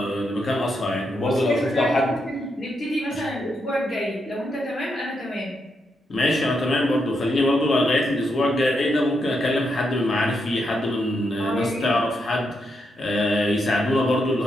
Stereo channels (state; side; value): normal; both; correlation 0.81